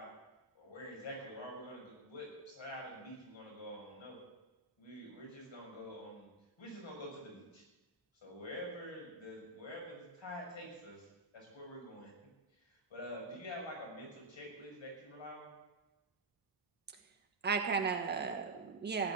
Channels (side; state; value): left; quieter; 3.4 dB